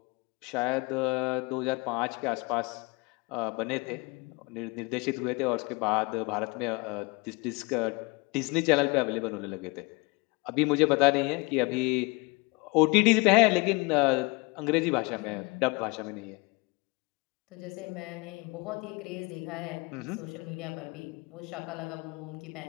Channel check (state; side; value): quieter; right; 27.6 dB